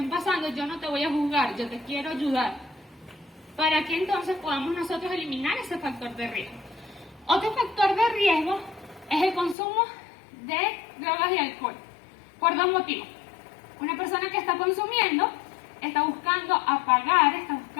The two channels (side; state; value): right; drops out; at 9.6 s